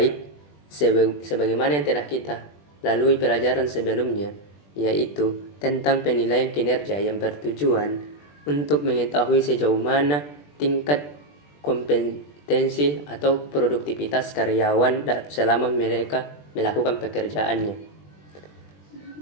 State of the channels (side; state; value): right; late; 20 ms